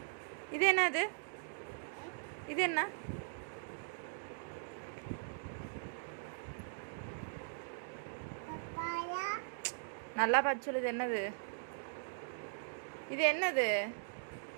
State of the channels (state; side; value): silent; left; digital silence